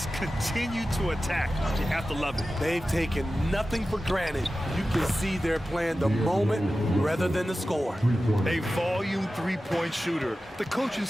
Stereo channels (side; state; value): both; normal; correlation 0.94